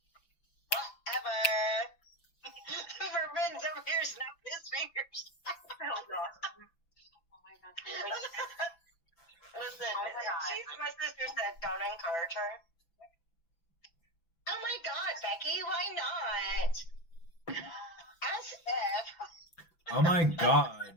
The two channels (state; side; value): late; right; 6.0 ms